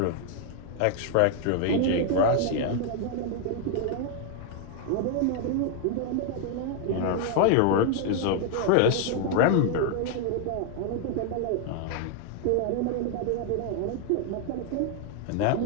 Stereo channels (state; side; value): different; both; correlation 0.00